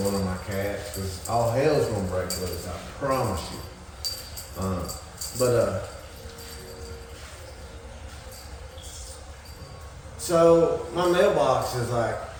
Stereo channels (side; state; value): both; identical; correlation 1.00